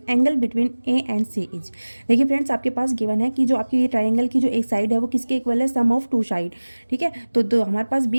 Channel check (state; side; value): inverted; both; correlation -1.00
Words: angle between A and C is। देखिए friends, आपके पास given है कि जो आपकी ये triangle की जो एक साइड है वो किसके इक्वल है, सम ऑफ टू साइड। ठीक है, तो हमारे पास